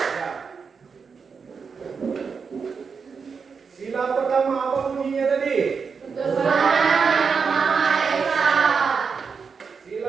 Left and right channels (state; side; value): quieter; left; 5.6 dB